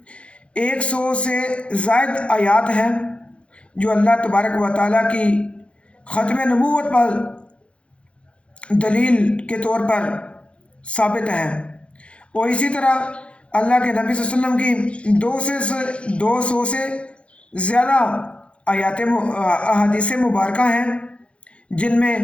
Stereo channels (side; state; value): right; late; 0.060 ms